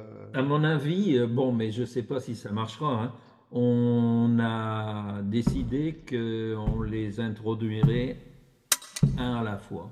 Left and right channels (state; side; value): identical; both; correlation 1.00